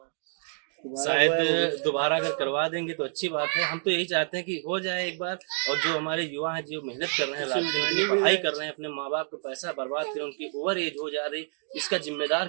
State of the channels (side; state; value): left; silent; 59 dB below the other